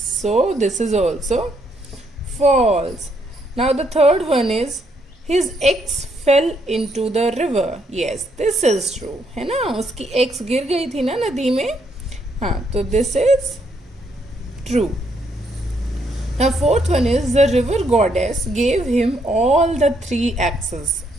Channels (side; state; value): both; normal; correlation 0.73